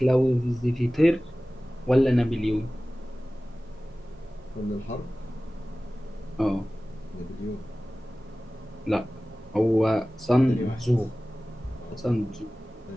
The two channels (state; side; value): normal; both; correlation 0.97